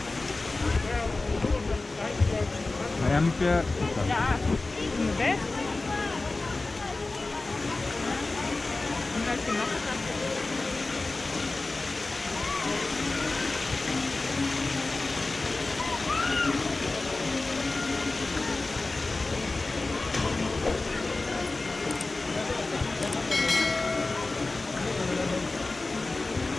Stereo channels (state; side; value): quieter; right; 3.3 dB